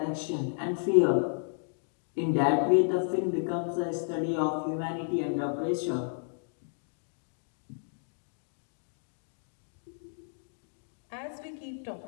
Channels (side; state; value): right; silent; digital silence